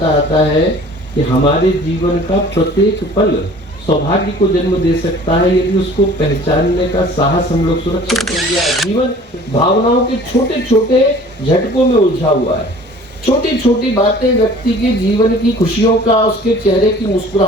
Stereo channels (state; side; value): normal; both; correlation 0.48